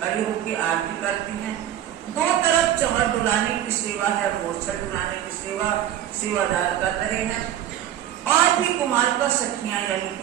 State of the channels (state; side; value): quieter; left; 11.5 dB